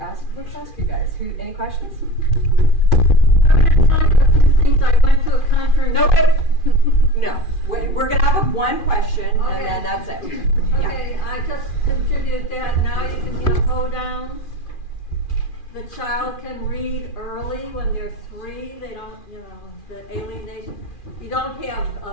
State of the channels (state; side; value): late; right; 2.4 ms